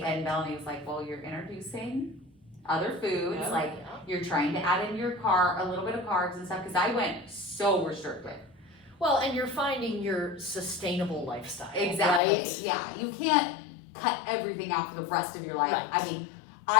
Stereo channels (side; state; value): right; drops out; at 12.2 s